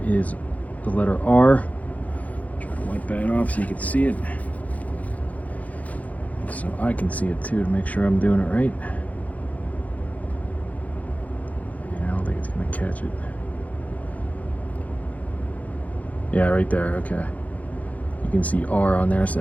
is the letter R. Try to wipe that off so you can see it. So I can see it too to make sure I'm doing it right. Yeah, I don't think it's going to catch it. Yeah, right there, okay. You can see R on there, so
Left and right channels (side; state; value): right; late; 0.073 ms